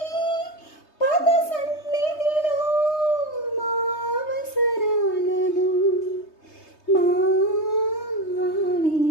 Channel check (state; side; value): late; right; 3.2 ms